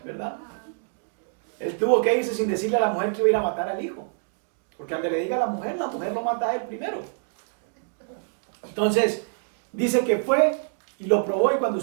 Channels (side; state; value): left; silent; digital silence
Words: ¿verdad? Él tuvo que irse sin decirle a la mujer que iba a ir a matar al hijo. Porque al que le diga a la mujer lo mata a él primero. Entonces, dice que fue y lo probó, y cuando